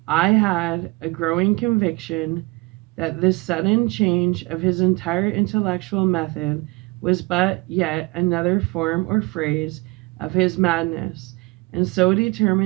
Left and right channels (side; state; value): left; quieter; 24.9 dB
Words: I had a growing conviction that this sudden change of his entire intellectual method was but yet another form or phrase of his madness, and so